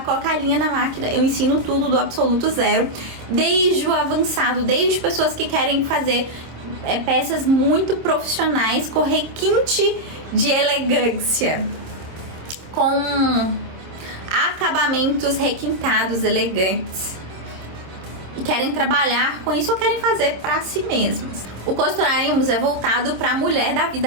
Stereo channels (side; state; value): left; late; 26 ms